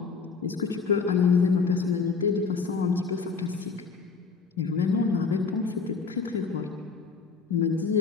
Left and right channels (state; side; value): quieter; right; 5.0 dB